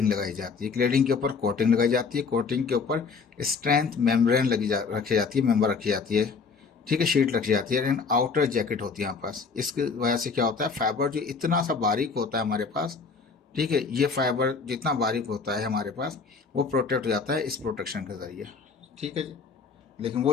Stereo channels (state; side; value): quieter; right; 5.0 dB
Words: लगाई जाती है, क्लेडिंग के ऊपर कोटिंग लगाई जाती है, कोटिंग के ऊपर स्ट्रेंथ मेम्ब्रेन रखी जाती है, मेम्बर रखी जाती है। ठीक है, शीट रखी जाती है, एंड आउटर जैकेट होती है हमारे पास। इसकी वजह से क्या होता है, फाइबर जो इतना सा बारीक होता है हमारे पास, ठीक है, ये फाइबर जितना बारीक होता है हमारे पास वो प्रोटेक्ट हो जाता है इस प्रोटेक्शन के ज़रिए। ठीक है जी, लेकिन वो